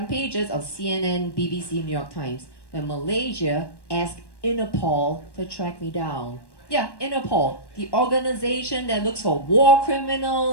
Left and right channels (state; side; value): late; right; 1.1 ms